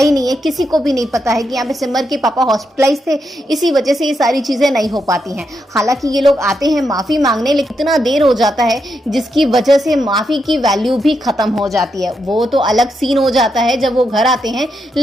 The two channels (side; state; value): both; normal; correlation 0.83